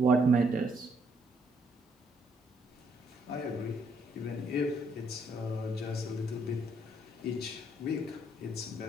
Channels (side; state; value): both; normal; correlation 0.70